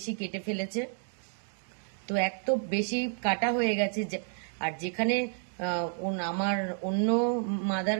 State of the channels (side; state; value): left; silent; 56 dB below the other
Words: কেটে ফেলেছে। তো এক তো বেশি কাটা হয়ে গেছে, আর যেখানে আমার অন্য মাদার